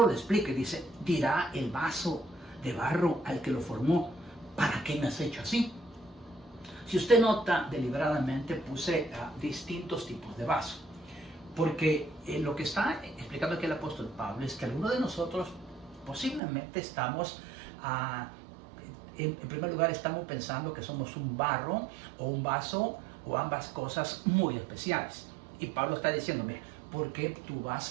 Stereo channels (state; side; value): drops out; left; at 16.4 s